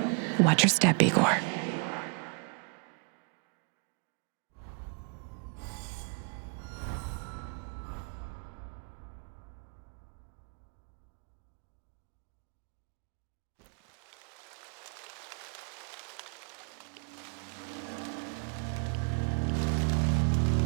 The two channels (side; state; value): left; quieter; 36.5 dB